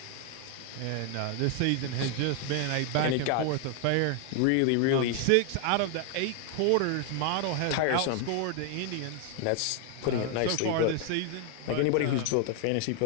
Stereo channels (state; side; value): different; both; correlation 0.00